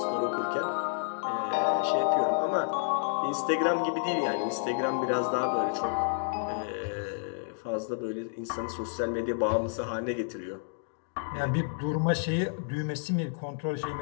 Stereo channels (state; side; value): silent; right; digital silence